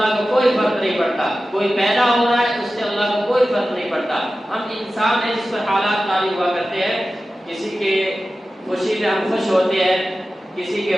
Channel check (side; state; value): both; normal; correlation 0.94